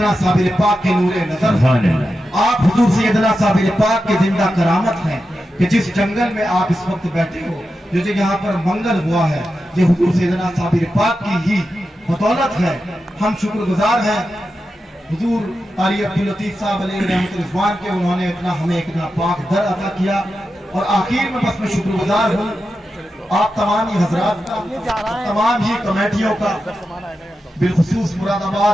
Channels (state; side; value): normal; both; correlation 0.90